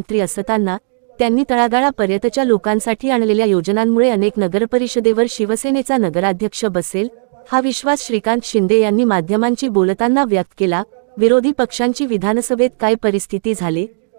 असताना त्यांनी तळागाळापर्यंतच्या लोकांसाठी आणलेल्या योजनांमुळे अनेक नगरपरिषदेवर शिवसेनेचा नगराध्यक्ष बसेल हा विश्वास श्रीकांत शिंदे यांनी माध्यमांशी बोलताना व्यक्त केला। विरोधी पक्षांची विधानसभेत काय परिस्थिती झाली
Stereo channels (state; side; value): silent; left; digital silence